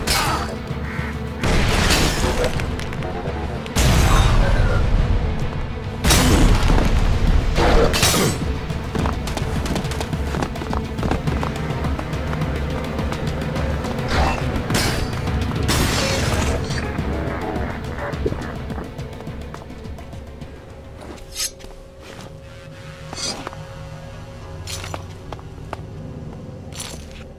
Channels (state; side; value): identical; both; correlation 1.00